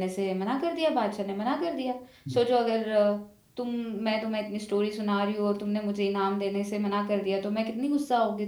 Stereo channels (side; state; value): both; identical; correlation 1.00